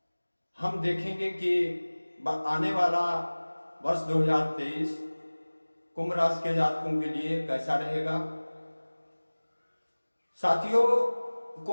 हम देखेंगे कि आने वाला वर्ष 2023 कुंभ राशि के जातकों के लिए कैसा रहेगा। साथियों,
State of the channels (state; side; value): inverted; both; correlation -1.00